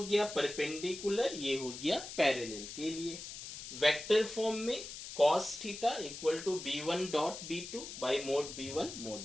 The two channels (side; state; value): left; noise; hiss, 10 dB below the sound